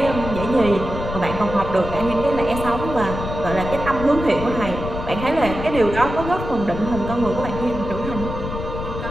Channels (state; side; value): noise; left; rumble, 7 dB below the sound